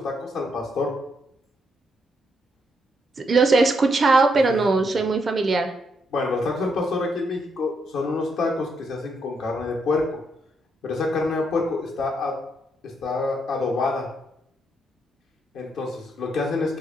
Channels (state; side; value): normal; both; correlation 0.77